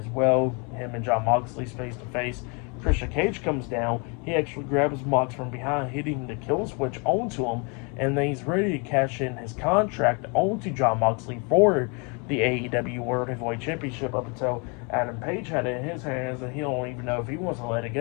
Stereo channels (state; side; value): quieter; right; 33.4 dB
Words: well. Him and Jon Moxley's face to face. Christian Cage comes down. He actually grabs Mox from behind, hitting the kill switch onto him, and then he's ready to cash in his contract onto Jon Moxley for the AEW World Heavyweight Championship up until Adam Page had it in his hands, and he don't even know if he wants to let it